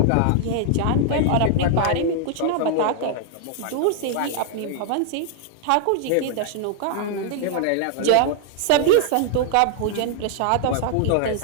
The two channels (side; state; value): both; different; correlation -0.01